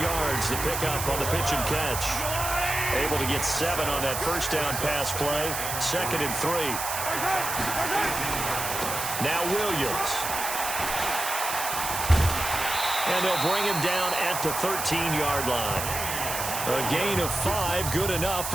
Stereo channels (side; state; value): right; noise; hiss, 4 dB below the sound